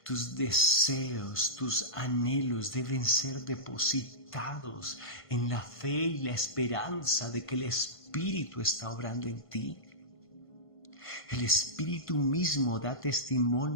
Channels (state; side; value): late; right; 1.5 ms